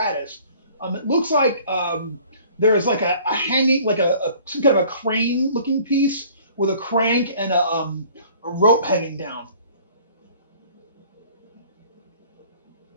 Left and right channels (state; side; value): inverted; both; correlation -0.52